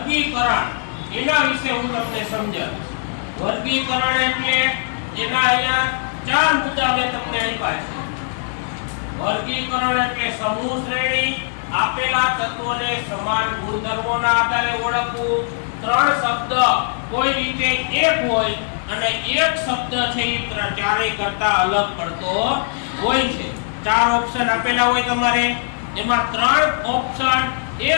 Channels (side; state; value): right; silent; 61 dB below the other